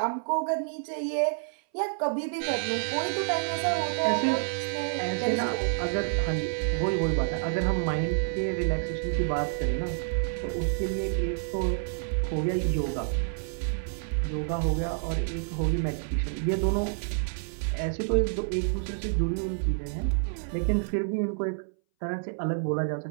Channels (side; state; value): left; silent; 59 dB below the other